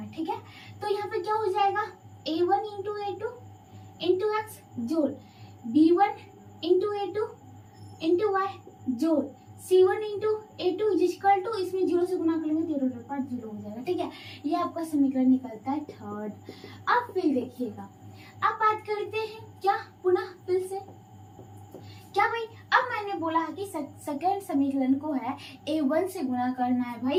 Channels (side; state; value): both; identical; correlation 1.00